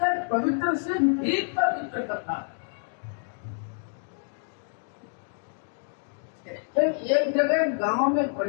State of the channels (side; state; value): right; silent; digital silence